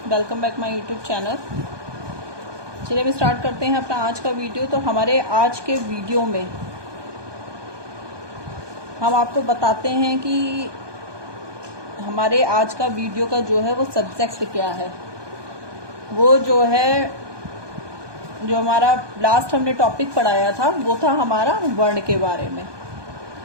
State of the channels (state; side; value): late; left; 1.2 ms